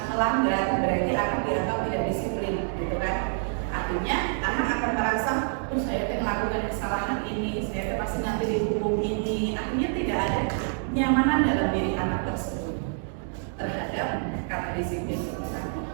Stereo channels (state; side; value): silent; left; 60 dB below the other